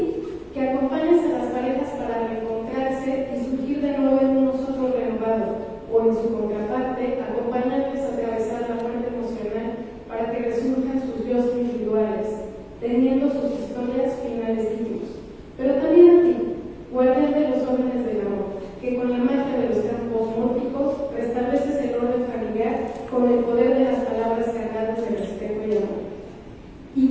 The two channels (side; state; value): both; identical; correlation 1.00